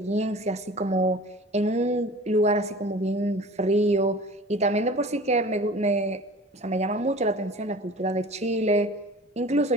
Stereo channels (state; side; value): normal; both; correlation 0.42